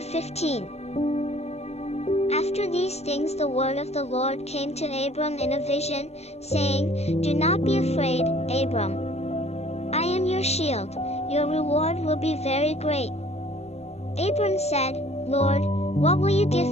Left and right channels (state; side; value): late; right; 0.31 ms